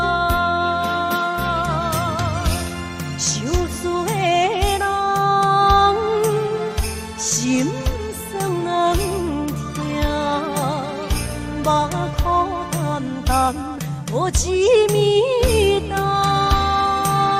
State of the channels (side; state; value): both; identical; correlation 1.00